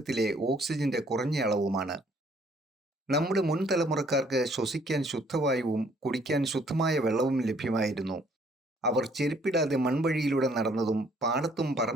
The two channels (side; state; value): both; normal; correlation 0.62